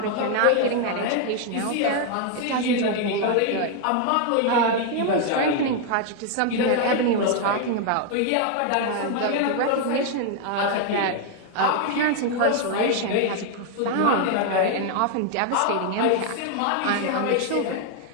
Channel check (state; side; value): different; both; correlation 0.00